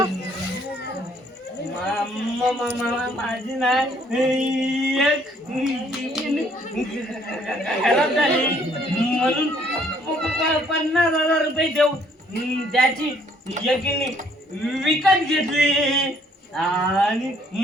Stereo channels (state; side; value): normal; both; correlation 0.63